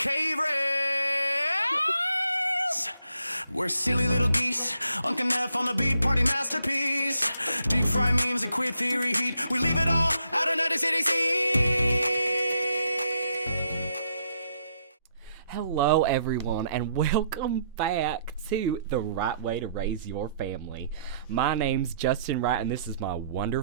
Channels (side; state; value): both; inverted; correlation -0.73